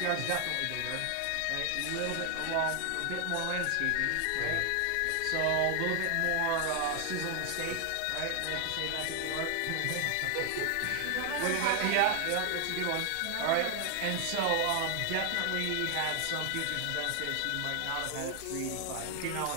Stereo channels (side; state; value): both; different; correlation 0.00